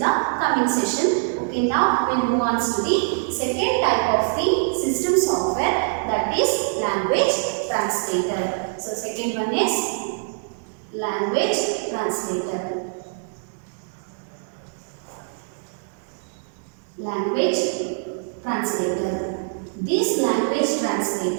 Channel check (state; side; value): silent; left; digital silence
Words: the coming session. Okay, now we'll move on to the second type of the system software, that is language translator. So second one is language translator. Language translator. This language